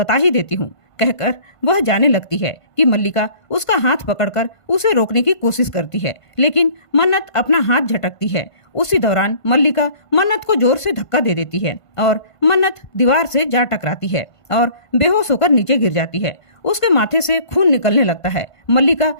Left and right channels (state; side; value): late; right; 1.5 ms